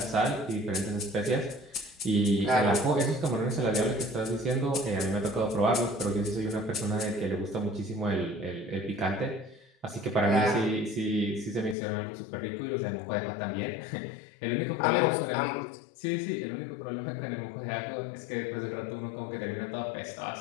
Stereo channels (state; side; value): drops out; right; at 11.8 s